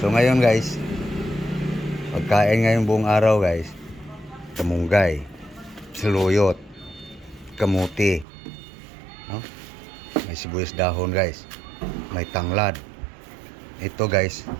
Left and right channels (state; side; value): drops out; left; at 8.2 s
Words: So ngayon guys, pagkain ngayong buong araw guys, kamunggay, saluyot, kamuti, no? May sibuyas dahon guys, may tanglad. Ito guys,